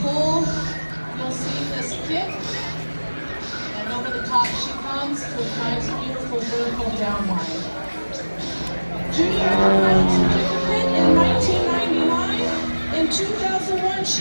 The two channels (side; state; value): both; inverted; correlation -1.00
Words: pull. You'll see this kick. And over the top she comes to a nice, beautiful vertical downline. Judy earned her certificate in 1999. In 2001,